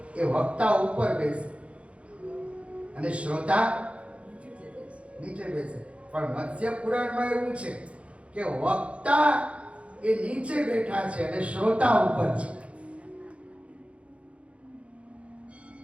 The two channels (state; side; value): late; left; 0.062 ms